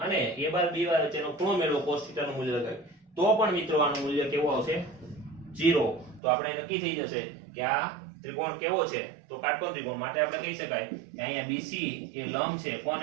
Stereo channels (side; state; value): left; drops out; at 6.2 s